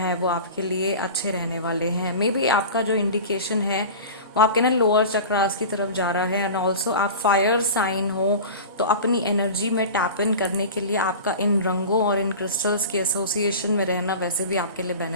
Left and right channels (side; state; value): both; inverted; correlation -0.33